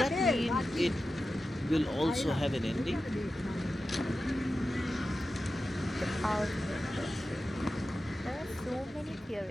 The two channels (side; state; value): both; normal; correlation 0.93